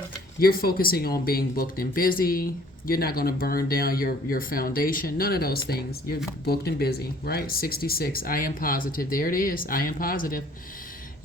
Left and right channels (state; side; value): normal; both; correlation 0.56